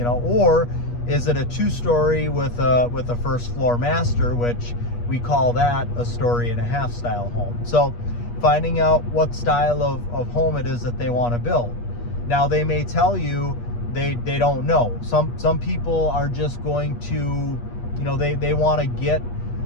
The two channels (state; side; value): late; right; 8.4 ms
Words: is it a two-story with a first floor master, which we call that a 1.5-story style home. So finding out what style of home it is that they want to build. Now, they may tell you they don't know. Some people are just going to, they want to get